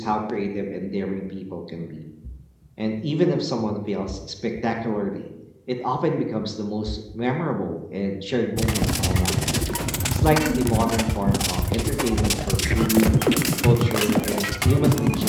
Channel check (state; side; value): identical; both; correlation 1.00